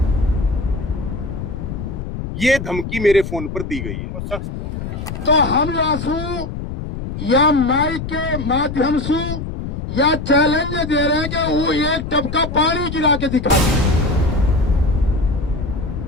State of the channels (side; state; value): left; noise; rumble, 6 dB below the sound